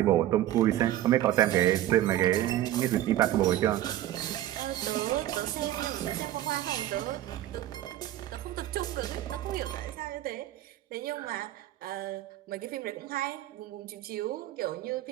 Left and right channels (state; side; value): quieter; left; 13.6 dB